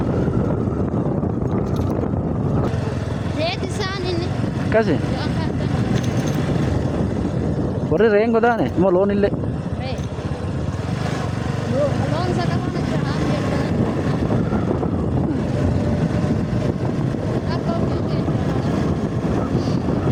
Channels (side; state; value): both; identical; correlation 1.00